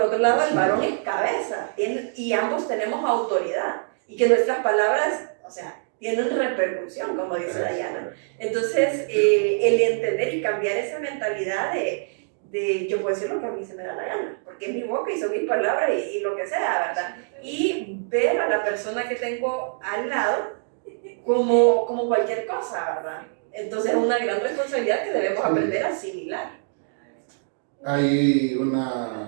otro lado el varón es cabeza y ambos tenemos autoridad y que nuestras palabras, o sea, tienen repercusión, como dice Dayana. Entonces, el entender y cambiar esa mentalidad de yo puedo decir lo que a mí se me da la gana, porque es mi boca y son mis palabras y lo que sea, ¿verdad? Y ver a la persona que tengo al lado como cualquier cosa, ¿verdad? Entonces es una gran responsabilidad que debemos aprender a asimilar. Hay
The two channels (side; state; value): left; silent; 62 dB below the other